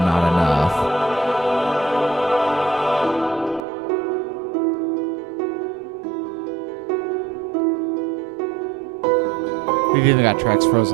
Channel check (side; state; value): left; drops out; at 3.6 s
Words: enough. We've even got tracks